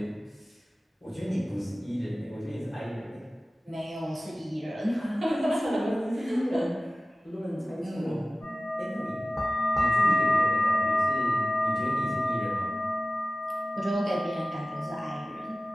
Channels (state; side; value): normal; both; correlation 0.96